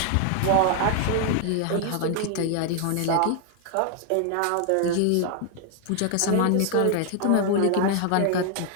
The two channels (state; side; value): different; both; correlation 0.00